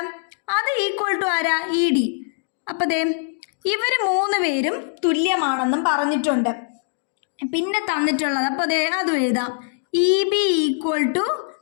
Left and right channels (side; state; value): right; silent; digital silence